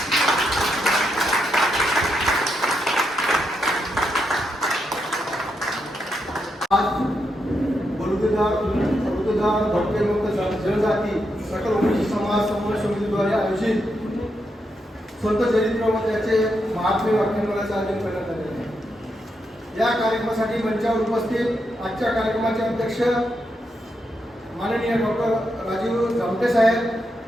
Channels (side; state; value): both; normal; correlation 0.82